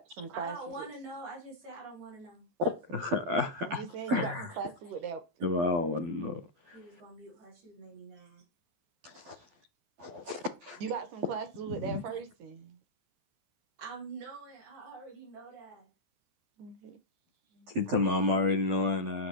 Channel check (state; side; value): late; left; 12 ms